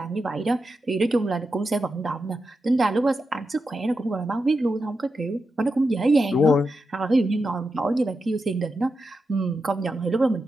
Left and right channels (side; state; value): both; normal; correlation 0.88